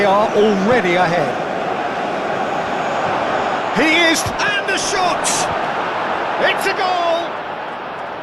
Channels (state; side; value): identical; both; correlation 1.00